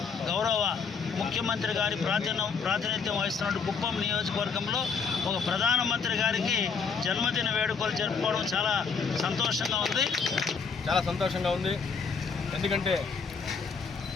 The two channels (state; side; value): quieter; right; 5.5 dB